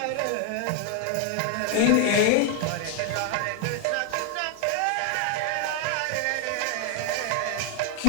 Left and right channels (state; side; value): different; both; correlation 0.00